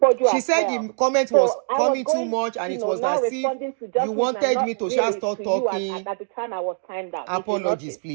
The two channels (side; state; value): left; silent; digital silence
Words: Poju. She said the comment was coming too much, and it was as if you wanted me to just start talking. At the time, I was timed out. Apologies,